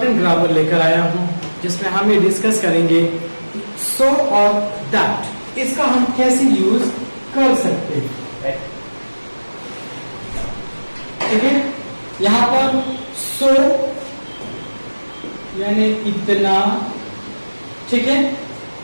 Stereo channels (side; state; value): both; inverted; correlation -1.00